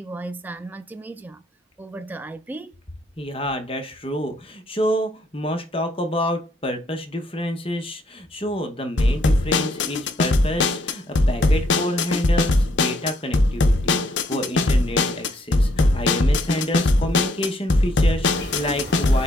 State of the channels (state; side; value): normal; both; correlation 0.70